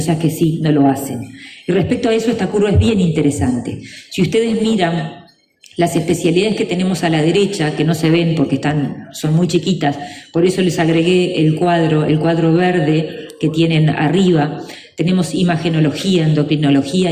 que sí no lo hacen. Y respecto a eso, esta curva es bien interesante. Si ustedes miran las especialidades que tenemos a la derecha, que no se ven porque son muy chiquitas, por eso les agregué el cuadro verde que tienen arriba. Tenemos imagenología, endocrinología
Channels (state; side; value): identical; both; correlation 1.00